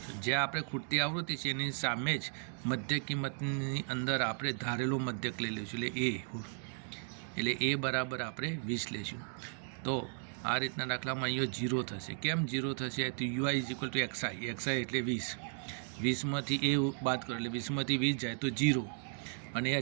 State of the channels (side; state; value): left; silent; 54 dB below the other